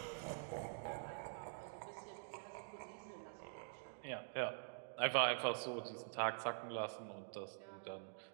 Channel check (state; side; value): silent; left; digital silence